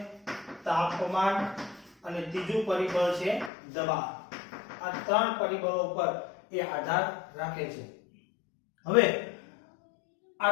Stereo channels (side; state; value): right; drops out; at 3.5 s